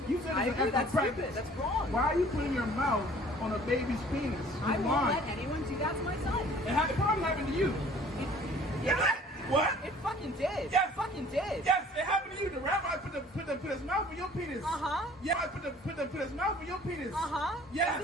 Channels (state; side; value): normal; both; correlation 0.52